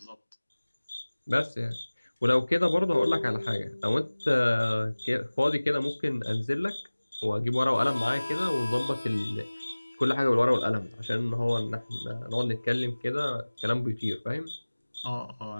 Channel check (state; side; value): inverted; both; correlation -1.00